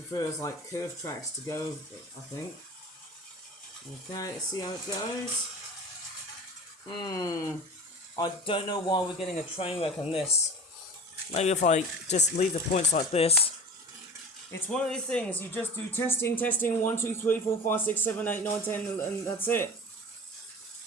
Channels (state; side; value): normal; both; correlation 0.36